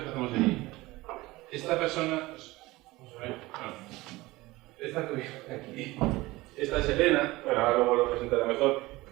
que hacemos allí. Esta persona, vamos a ver, esta que viene aquí, esta es Elena, bueno, ahora luego lo presentaré mejor,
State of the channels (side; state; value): left; quieter; 20.1 dB